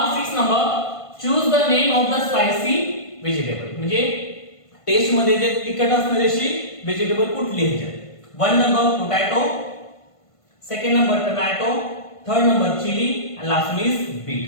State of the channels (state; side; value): late; right; 1.5 ms